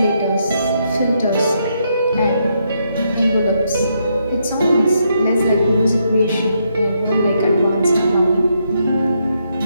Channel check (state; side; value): inverted; both; correlation -0.78